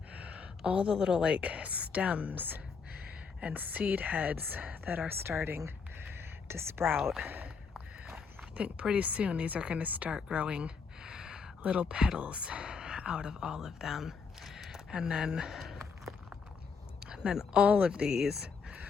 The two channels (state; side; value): quieter; right; 5.5 dB